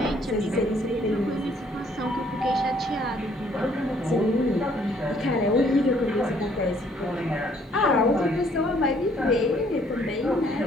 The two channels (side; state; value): both; normal; correlation 0.64